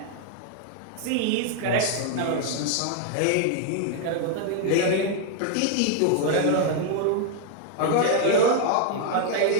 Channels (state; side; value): different; both; correlation 0.00